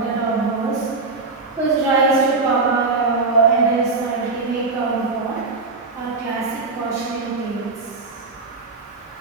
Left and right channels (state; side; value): quieter; left; 3.9 dB